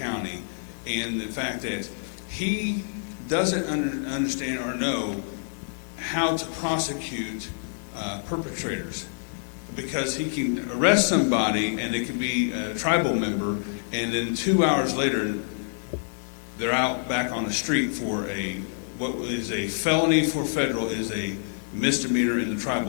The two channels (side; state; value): right; silent; digital silence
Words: and the fact that he doesn't understand or know how to prosecute perpetrators, because he can arrest somebody and it can be a tribal member, and then 2 hours later they're out back on the street for what is a felony for federal is a misdemeanor in the